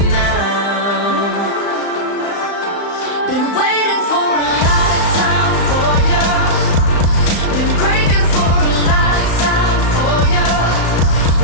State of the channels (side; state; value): right; late; 35 ms